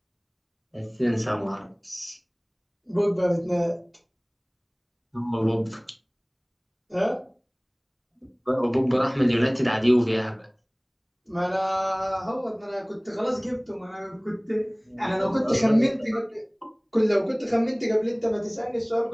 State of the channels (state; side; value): identical; both; correlation 1.00